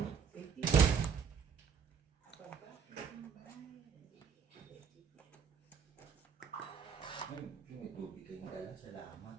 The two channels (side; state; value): left; quieter; 6.6 dB